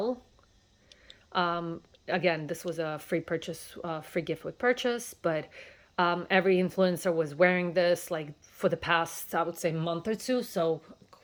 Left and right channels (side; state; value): both; identical; correlation 1.00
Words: Again, this was a free purchase, free gift with purchase, but every influencer was wearing this like for the past, I would say, month or two. So